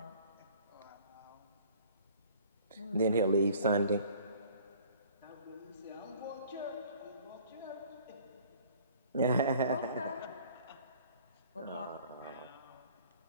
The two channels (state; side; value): inverted; both; correlation -0.53